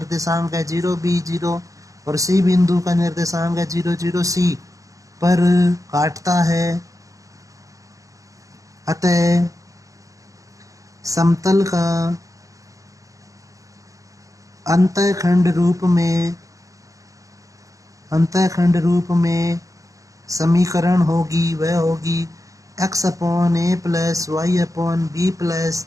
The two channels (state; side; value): late; left; 0.16 ms